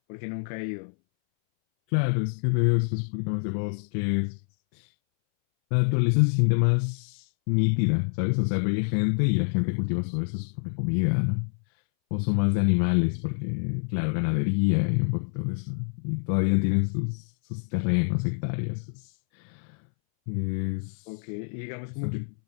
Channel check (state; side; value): silent; right; 61 dB below the other